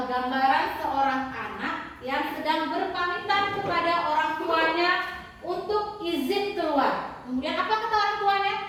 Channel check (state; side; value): identical; both; correlation 1.00